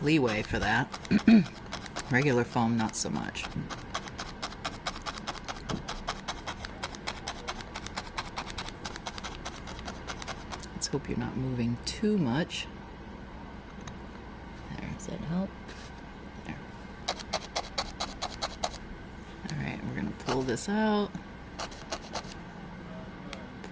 leeway for that. Regular foam, not so much. Let's hope you're not moving too much. There, does that help? There. Alright, we're going to pull this out.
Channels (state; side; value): identical; both; correlation 1.00